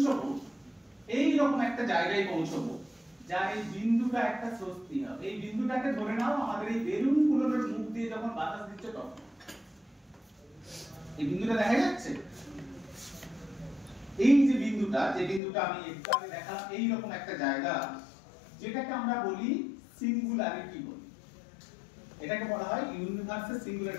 এইরকম একটা জায়গায় পৌঁছবো, যার এই বিন্দুটা একটা স্বস্তি হবে। এই বিন্দুটাকে ধরে নাও আমাদের এই বেলুন গুলোর মুখ দিয়ে যখন বাতাস দিচ্ছে তখন এই বিন্দুটা দেখা যাচ্ছে। এই যে বিন্দুটা, আমি একটু আগে দেখালাম, এইরকম একটা জায়গা, যেটাকে আমরা বলি সিঙ্গুলারিটি বলি। এটাকে বলা হয় ইউনিভার্সের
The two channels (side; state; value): right; drops out; at 15.4 s